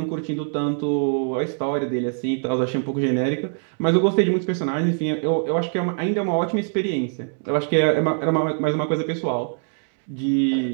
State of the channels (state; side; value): silent; left; digital silence